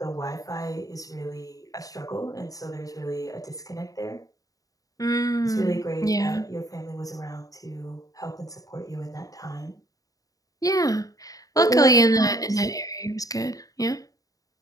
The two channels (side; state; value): right; late; 0.17 ms